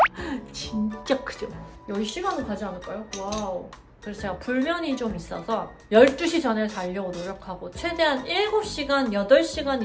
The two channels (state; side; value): identical; both; correlation 1.00